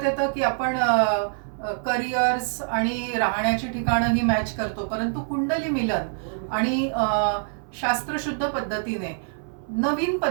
येतं की आपण करिअर्स आणि राहण्याची ठिकाणं ही मॅच करतो, परंतु कुंडली मिलन आणि शास्त्रशुद्ध पद्धतीने नवीन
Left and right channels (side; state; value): left; silent; 60 dB below the other